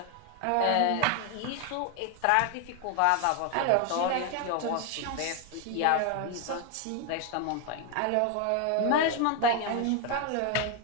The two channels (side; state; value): both; different; correlation 0.01